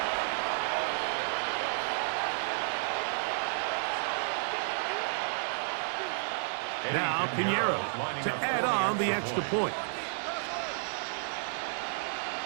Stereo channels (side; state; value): left; silent; digital silence